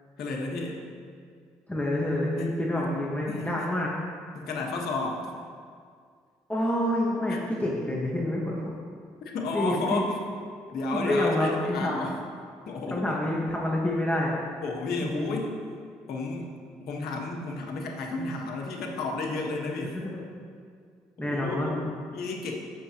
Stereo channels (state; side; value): normal; both; correlation 0.72